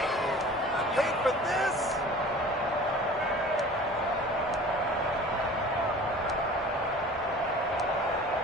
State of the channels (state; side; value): normal; both; correlation 0.43